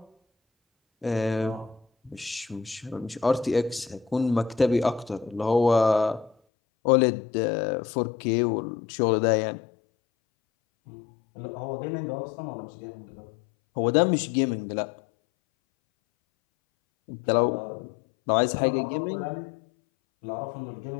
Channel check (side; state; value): right; drops out; at 6.4 s